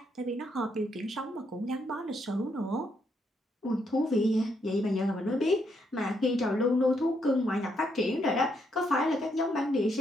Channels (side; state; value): both; normal; correlation 0.76